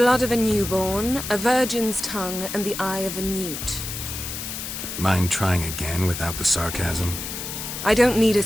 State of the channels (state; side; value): noise; left; hiss, 7 dB below the sound